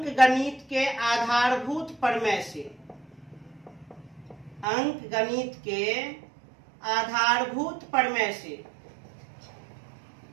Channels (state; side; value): drops out; left; at 4.7 s